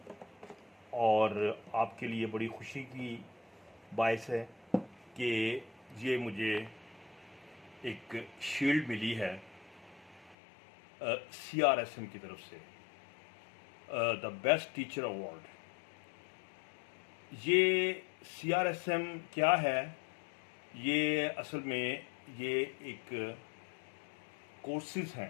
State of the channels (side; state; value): right; drops out; at 10.4 s